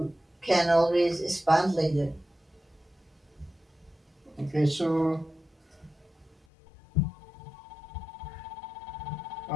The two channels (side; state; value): right; drops out; at 6.4 s